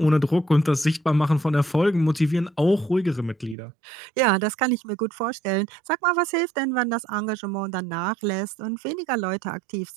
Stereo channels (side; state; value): left; drops out; at 3.6 s